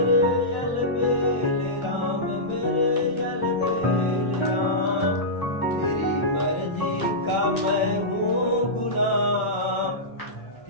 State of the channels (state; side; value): late; right; 1.4 ms